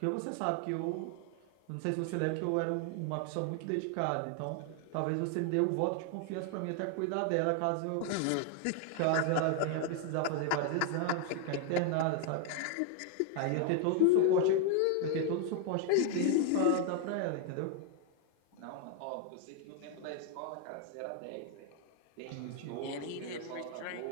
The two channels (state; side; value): different; both; correlation 0.01